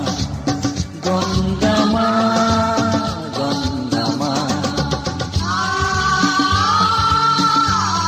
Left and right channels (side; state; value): both; identical; correlation 1.00